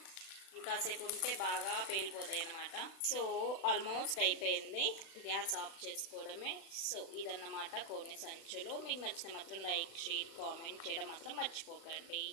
ఇంకాసేపు ఉంటే బాగా పేలిపోతాయి అన్నమాట. సో ఆల్మోస్ట్ అయిపోయింది, గ్యాస్ ఆఫ్ చేసుకోవడమే. సో ఇదన్నమాట కోనె సంచులు. మీకు నచ్చితే మాత్రం లైక్, షేర్, కామెంట్ చేయడం మాత్రం మర్చిపోకండి.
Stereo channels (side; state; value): right; late; 36 ms